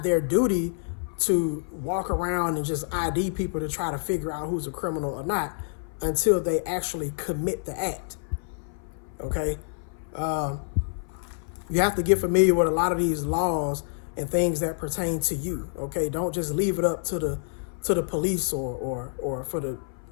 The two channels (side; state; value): right; silent; 56 dB below the other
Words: their duty to walk around and just ID people to try to figure out who's a criminal or not until they actually commit the act. Okay? You have to get familiar with a lot of these laws and things that pertain to you. Okay? Don't just leave it up to the police or for the